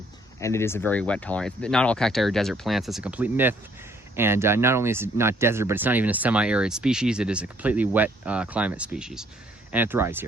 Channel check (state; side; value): normal; both; correlation 0.64